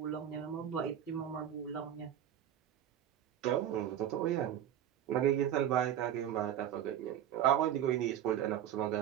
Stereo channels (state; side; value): quieter; left; 10.5 dB